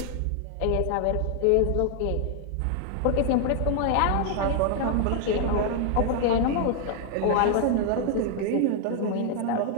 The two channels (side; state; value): both; different; correlation 0.00